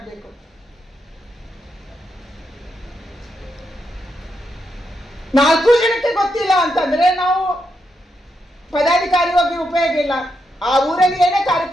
4 ಜನಕ್ಕೆ ಗೊತ್ತಿಲ್ಲ ಅಂತಂದ್ರೆ ನಾವು ಪದಾಧಿಕಾರಿ ಹೋಗಿ ಉಪಯೋಗ ಇಲ್ಲ. ಆ ಊರಲ್ಲಿ ಏನೇ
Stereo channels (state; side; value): normal; both; correlation 0.82